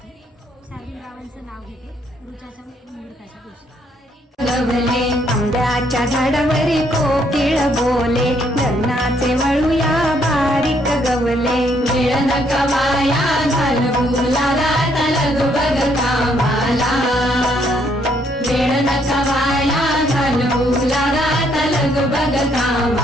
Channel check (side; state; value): both; normal; correlation 0.70